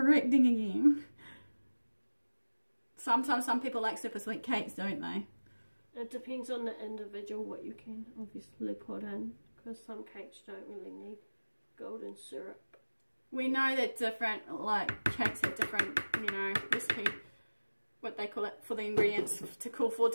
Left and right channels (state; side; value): inverted; both; correlation -1.00